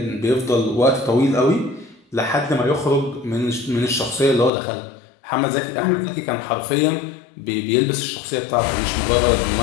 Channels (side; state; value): right; drops out; at 4.5 s